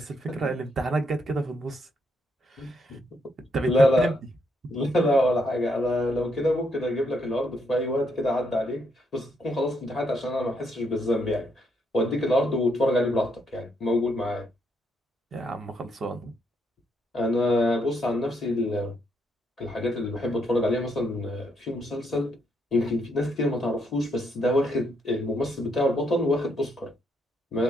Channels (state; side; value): normal; both; correlation 0.75